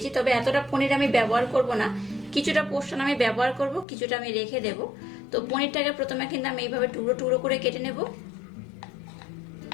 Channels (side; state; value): right; drops out; at 3.9 s